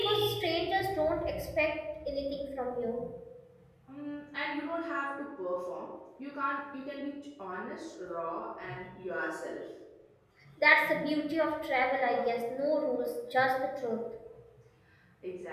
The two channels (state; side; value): identical; both; correlation 1.00